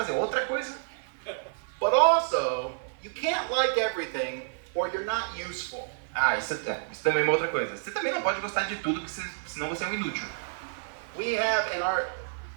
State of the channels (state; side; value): silent; left; 58 dB below the other